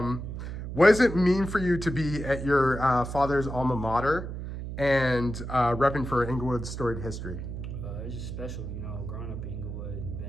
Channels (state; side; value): noise; right; hum, 7 dB below the sound